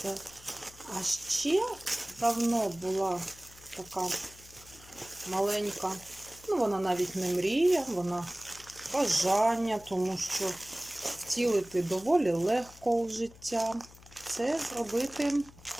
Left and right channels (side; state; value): left; noise; hum, 22 dB below the sound